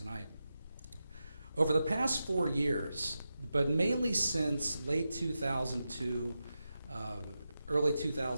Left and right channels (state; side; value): inverted; both; correlation -0.90